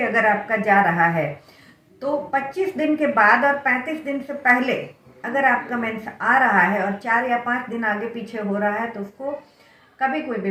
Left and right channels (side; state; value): both; identical; correlation 1.00